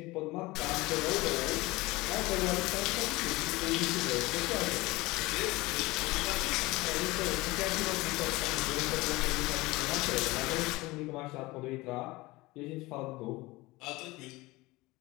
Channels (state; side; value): quieter; right; 21.2 dB